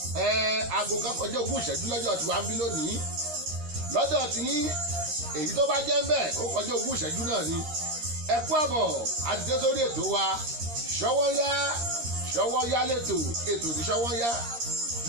aago kan kọjá ogún ìṣẹ́jú lọ́jọ́ tí wàá ń bí lónìí. Lọ́dọ̀ tí yín èyí tó bá jẹ́ ń bẹ̀ ó kọjá ogún ìṣẹ́jú náà ni. Ẹ kú àbọ̀ àti dé sórí ètò wa Ṣọ́wọ́nyá lẹ́tò ètò ní Ṣọ́wọ́nyá.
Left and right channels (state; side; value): late; left; 13 ms